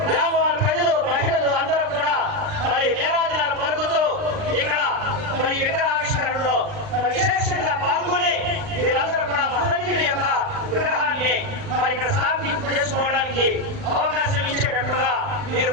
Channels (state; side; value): late; left; 39 ms